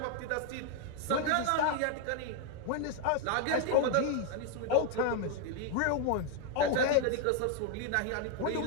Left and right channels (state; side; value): different; both; correlation 0.00